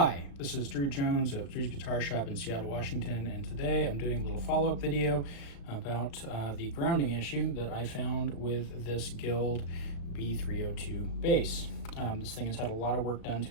this is Drew Jones of Drewsguitarshop in Seattle, Washington, and today I'm doing a little follow-up video about the grounding issue that I found with this Guild B-302 bass. This thing has had a lot of work done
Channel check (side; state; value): right; late; 36 ms